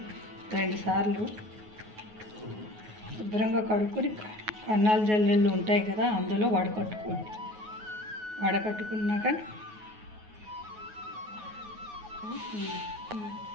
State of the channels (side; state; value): left; late; 9.4 ms